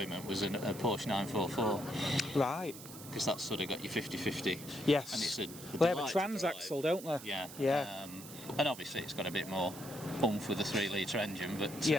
was a Porsche 944. Right. Because that's sort of got your 50-50. Yes. And it's they have a transaxle, don't they? Yeah. Yeah. And obviously it's got a bit more oomph with a 3-litre engine, but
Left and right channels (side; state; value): right; noise; hiss, 14 dB below the sound